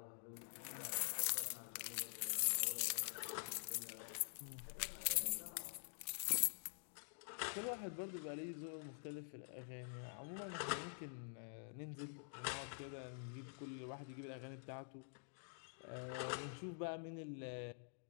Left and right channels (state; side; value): silent; right; digital silence